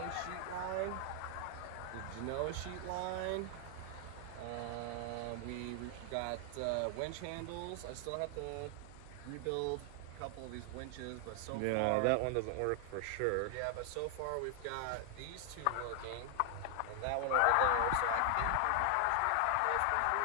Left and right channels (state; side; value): different; both; correlation 0.00